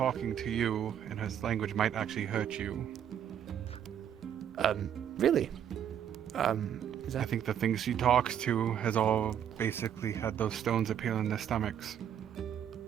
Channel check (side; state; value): left; quieter; 9.4 dB